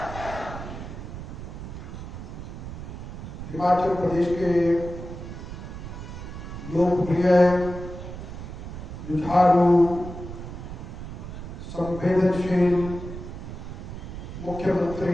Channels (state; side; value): noise; right; rumble, 9 dB below the sound